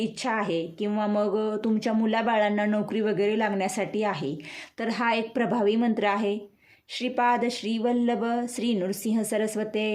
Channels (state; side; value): identical; both; correlation 1.00